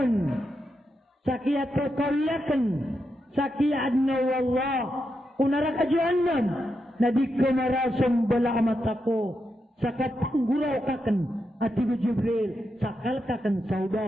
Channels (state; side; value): normal; both; correlation 0.85